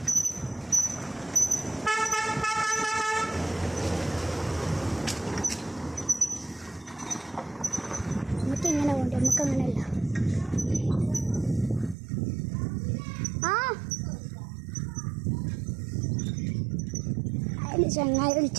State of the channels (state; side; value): drops out; left; at 12.0 s